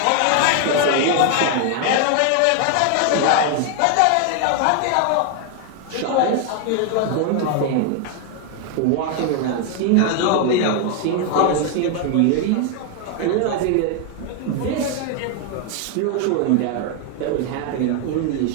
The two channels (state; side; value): different; both; correlation 0.01